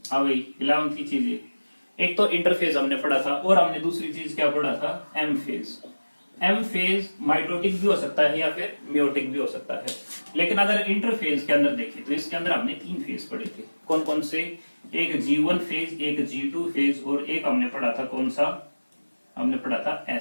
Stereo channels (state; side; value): inverted; both; correlation -1.00